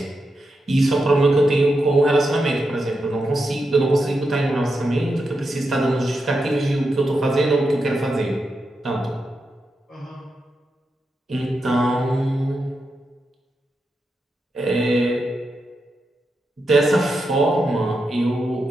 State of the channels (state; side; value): normal; both; correlation 0.87